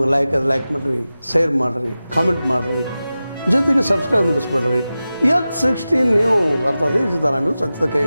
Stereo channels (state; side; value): inverted; both; correlation -0.95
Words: ಲೈಕ್ ಮಾಡಿರಿ, ಶೇರ್ ಮಾಡಿರಿ, ಕಾಮೆಂಟ್ ಮಾಡಿರಿ, ಜೊತೆಗೆ ಸಬ್ಸ್ಕ್ರೈಬ್ ನಿಲ್ಲಿಸ್ಬೇಡ್ರಿ. H16 ನ್ಯೂಸ್ ಅರ್ಥಾತ್ ಈ ಸಿದ್ದರಾಮಯ್ಯ ಸತ್ಯದ